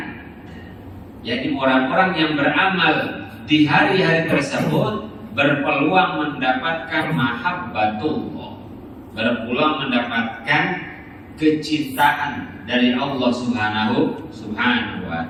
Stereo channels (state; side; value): identical; both; correlation 1.00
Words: Jadi orang-orang yang beramal di hari-hari tersebut berpeluang mendapatkan mahabbatullah, berpeluang mendapatkan kecintaan dari Allah Subhanahu wa